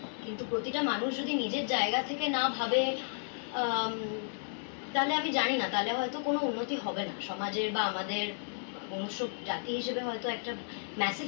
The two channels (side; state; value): right; silent; digital silence